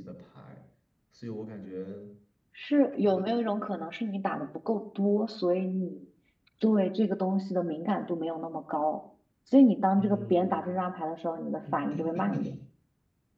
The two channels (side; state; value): both; identical; correlation 1.00